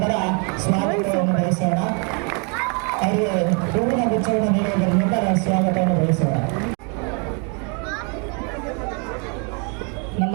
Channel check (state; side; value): quieter; left; 36.1 dB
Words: ಸ್ವಾಗತವನ್ನು ಬಯಸೋಣ. ಅವರಿಗೆ ಹೂವಿನ ಗುಚ್ಛವನ್ನು ನೀಡುವುದರ ಮೂಲಕ ಸ್ವಾಗತವನ್ನು ಬಯಸೋಣ. ನಮ್ಮ